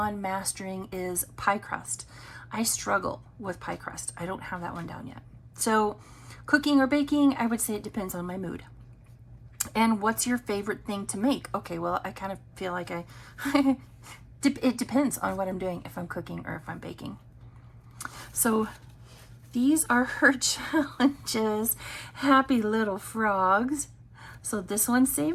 mastering is pie crust. I struggle with pie crust. I don't have that one down yet. So cooking or baking, I would say it depends on my mood. And what's your favorite thing to make? Okay, well, I kind of feel like it depends on what I'm doing, if I'm cooking or if I'm baking. So these are her challenges. Happy little frogs. So this one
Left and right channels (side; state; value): both; identical; correlation 1.00